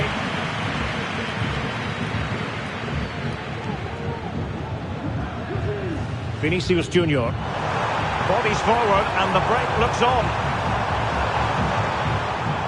Vinicius Junior. Bodies forward and the break looks on.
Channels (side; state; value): both; identical; correlation 1.00